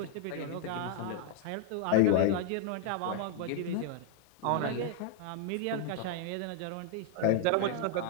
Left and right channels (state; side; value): different; both; correlation 0.00